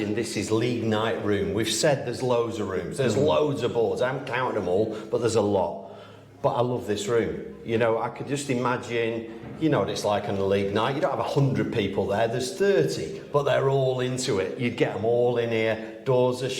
this is league night room. We've said there's loads of rooms. There's loads of boards. I haven't counted them all, but there's a lot. But I love this room. You know, I could just imagine, you know what it's like on a league night. You don't have 100 people there. There's 30, but they're all into it. You'd get them all in here. Doors are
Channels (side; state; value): both; identical; correlation 1.00